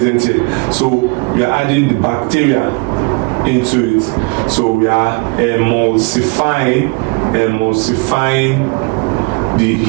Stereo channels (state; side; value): quieter; left; 30.2 dB